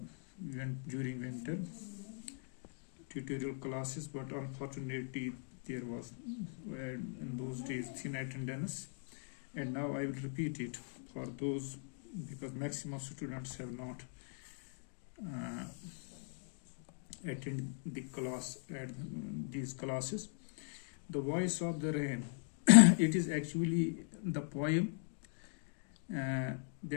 during winter tutorial classes, but unfortunately there was in those days thin attendance, and now I will repeat it for those because maximum students have not attend the class at these classes. The Voice of the Rain. It is actually the poem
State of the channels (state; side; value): silent; right; digital silence